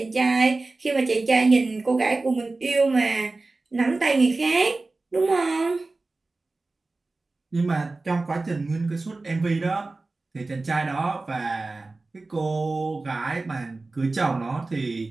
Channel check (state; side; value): quieter; left; 3.4 dB